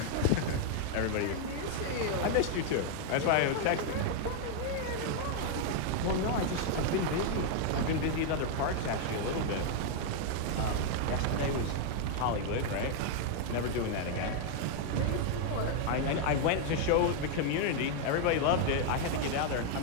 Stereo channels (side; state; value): both; different; correlation 0.00